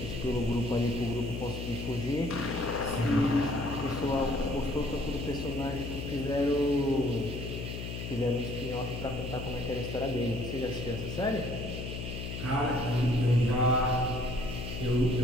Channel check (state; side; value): noise; left; hum, 6 dB below the sound